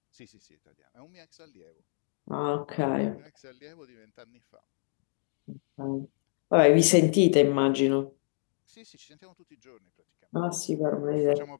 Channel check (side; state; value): right; silent; digital silence